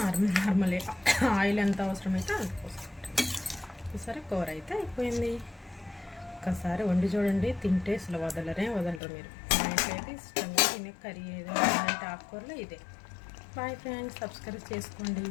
నార్మల్ ఆయిల్ ఎంత అవసరమైతే అంత పోసుకుంటాను. ఈసారి కూర అయితే అయిపోయింది. ఒక్కసారి వండి చూడండి, తింటే అసలు వదలరు మీరు. మా ఇంట్లో అయితే ఇష్టంగా తినే కర్రీ ఏదైనా అంటే ఆకుకూరలో ఇదే. బాయ్ ఫ్రెండ్స్, సబ్స్క్రైబ్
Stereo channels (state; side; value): drops out; right; at 9.0 s